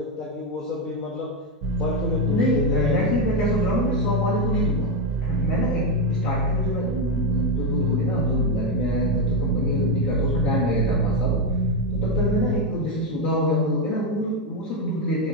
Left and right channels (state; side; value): normal; both; correlation 0.06